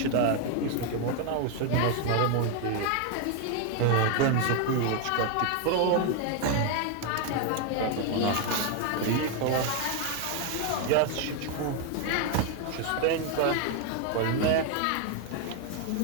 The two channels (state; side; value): different; both; correlation 0.01